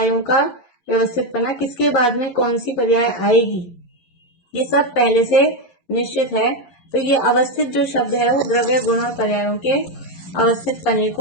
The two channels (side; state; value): right; late; 11 ms